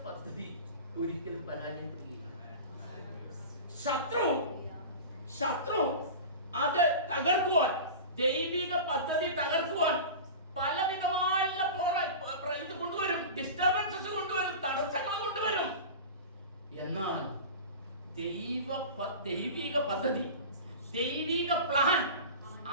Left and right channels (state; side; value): inverted; both; correlation -0.32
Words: പദ്ധതി ഒരിക്കലും പരാജയപ്പെടുകയില്ല. ശത്രു അത് തകർക്കുവാൻ, ദൈവിക പദ്ധതി തകർക്കുവാൻ പലവിധമായുള്ള ഇത് കൊണ്ടുവരും, ഡിസ്റ്റർബൻസസ് കൊണ്ടുവരും, തടസ്സങ്ങൾ കൊണ്ടുവരും. എന്നാൽ ദൈവിക പദ്ധതി, ദൈവിക പ്ലാൻ,